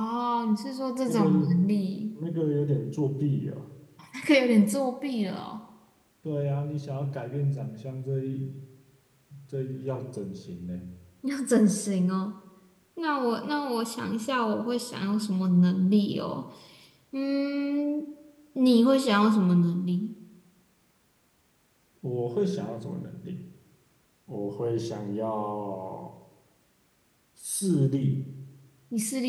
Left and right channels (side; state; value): both; identical; correlation 1.00